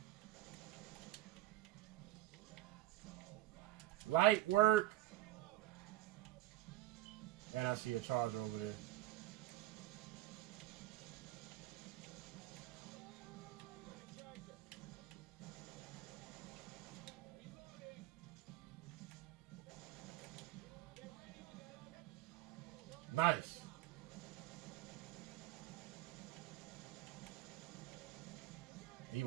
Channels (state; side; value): quieter; left; 16.1 dB